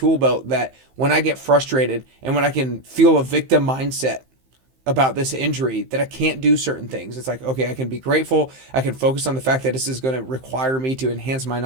belt that when I get frustrated and when I can feel a victim mindset about this injury that I can't do certain things, it's like, okay, I can be grateful. I can focus on the fact that this is going to require me to enhance my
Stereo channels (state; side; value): late; left; 15 ms